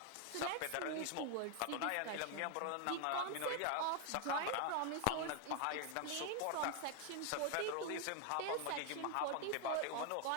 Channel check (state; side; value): different; both; correlation 0.00